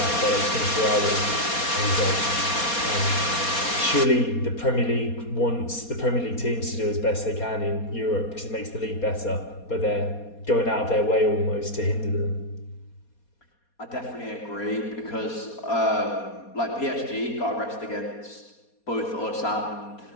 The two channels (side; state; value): right; late; 4.2 ms